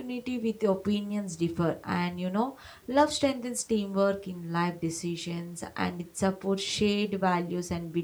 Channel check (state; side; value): identical; both; correlation 1.00